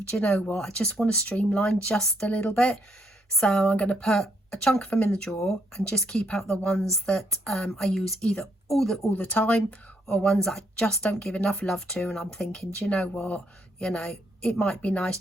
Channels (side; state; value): both; normal; correlation 0.73